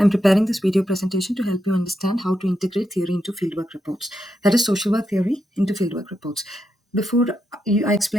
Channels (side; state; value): both; normal; correlation 0.84